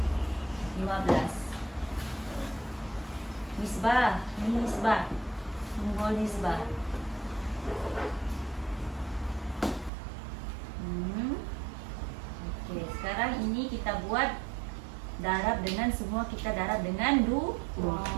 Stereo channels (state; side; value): drops out; left; at 9.9 s